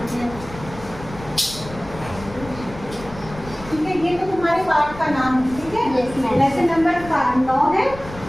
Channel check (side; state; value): left; noise; rumble, 15 dB below the sound